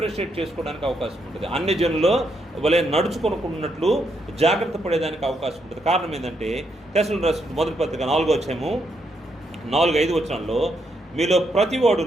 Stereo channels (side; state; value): both; normal; correlation 0.78